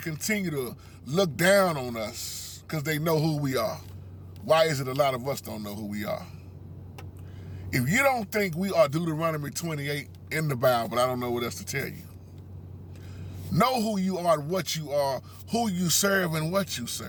to look down on us, because they know who we are. Why is it a lot of us don't know who we are? If you don't think we are Deuteronomy 28 in the Bible, I don't know what else to tell you. Know who you are, what you are, who you serve, and what you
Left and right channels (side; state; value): both; identical; correlation 1.00